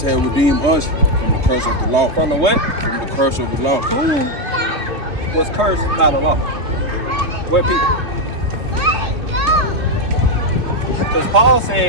had redeemed us from the curse of the law. From the what? From the curse of the law. Who was cursed by the law? What people? Because Paul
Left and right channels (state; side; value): late; left; 3.2 ms